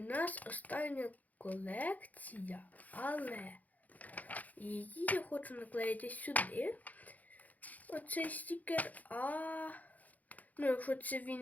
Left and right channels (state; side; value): late; right; 0.079 ms